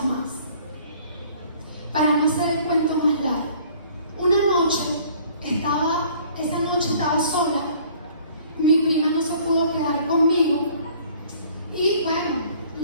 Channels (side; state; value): both; inverted; correlation -0.55